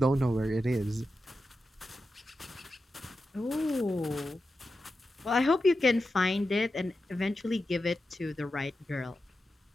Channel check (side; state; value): both; normal; correlation 0.91